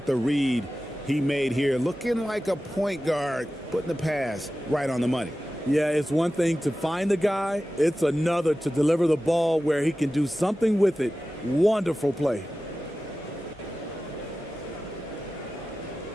the read he made here? Looking like a point guard, putting the pass right on the money. Yeah, it's one thing to find the guy. It's another to deliver the ball where he can do something with it. Wonderful play.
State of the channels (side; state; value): both; normal; correlation 0.95